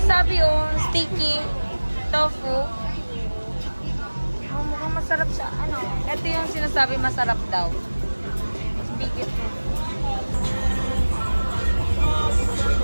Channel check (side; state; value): both; inverted; correlation -1.00